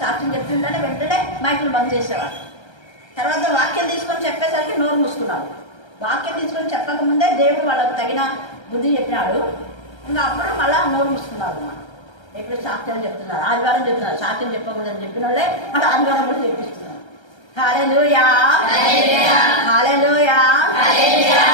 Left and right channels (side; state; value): right; late; 1.3 ms